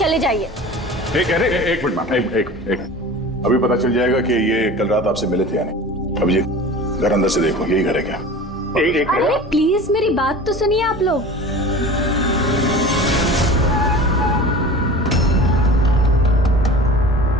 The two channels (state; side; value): normal; both; correlation 0.37